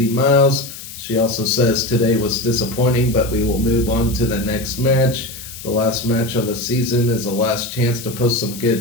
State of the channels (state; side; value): noise; left; hiss, 13 dB below the sound